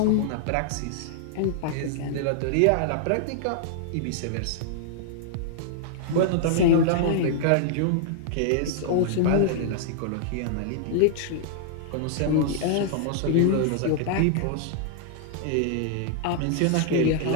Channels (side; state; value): both; different; correlation -0.01